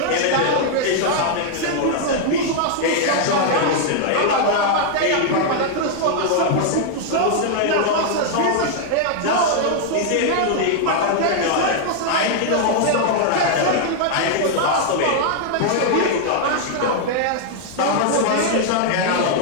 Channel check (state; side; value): different; both; correlation 0.00